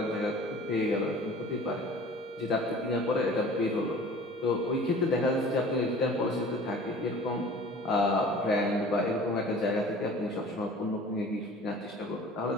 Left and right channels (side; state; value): both; normal; correlation 0.46